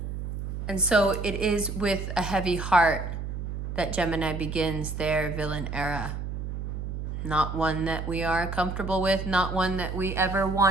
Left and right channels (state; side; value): noise; right; hum, 5 dB below the sound